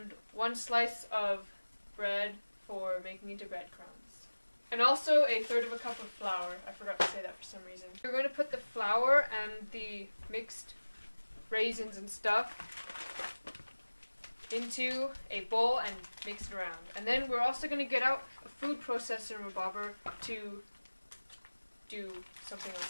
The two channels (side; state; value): both; inverted; correlation -1.00